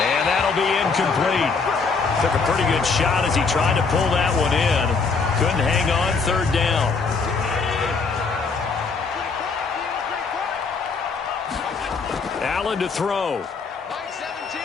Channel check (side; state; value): right; quieter; 4.8 dB